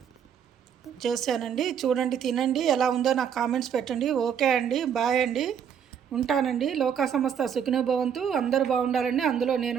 చేశానండి. చూడండి, తినండి, ఎలా ఉందో నాకు కామెంట్స్ పెట్టండి. ఓకే అండి, బాయ్ అండి, ఉంటానండి. లోకా సమస్త సుఖినో భవంతు. అందరూ బాగుండాలండి, అందులో నేను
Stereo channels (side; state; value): left; quieter; 8.1 dB